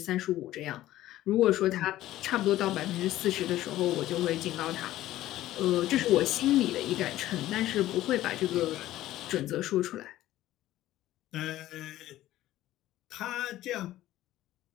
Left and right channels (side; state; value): right; quieter; 14.7 dB